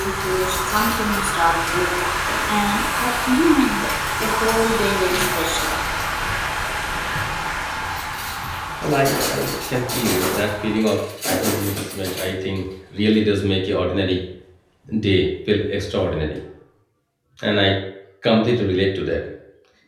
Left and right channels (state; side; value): identical; both; correlation 1.00